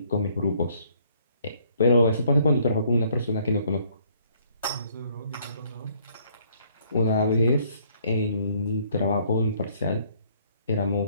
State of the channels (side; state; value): both; inverted; correlation -0.64